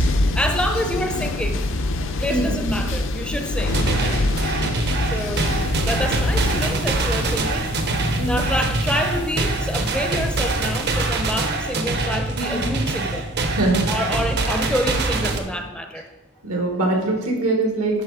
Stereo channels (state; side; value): normal; both; correlation 0.56